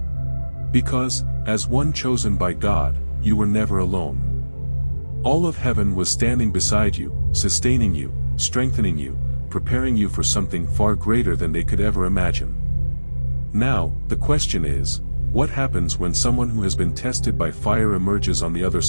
Because, as one chosen by God, you were never alone. All of heaven was standing beside you, sustaining you, strengthening you, preparing you for something far greater than they could ever imagine. Now, the question is, what happens when someone who has been tested by fire emerges on the other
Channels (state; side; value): inverted; both; correlation -1.00